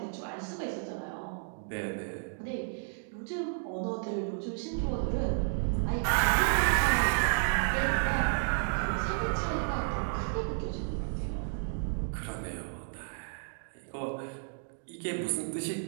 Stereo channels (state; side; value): silent; left; digital silence